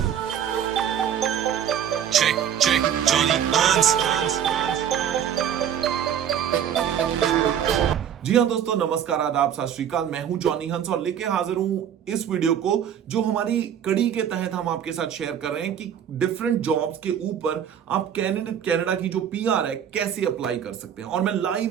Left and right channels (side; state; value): left; quieter; 9.1 dB